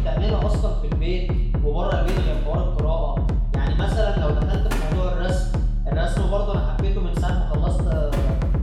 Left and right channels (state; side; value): identical; both; correlation 1.00